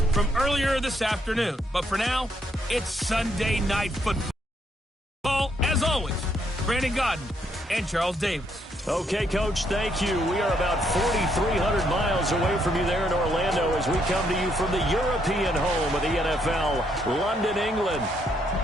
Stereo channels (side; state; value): both; normal; correlation 0.73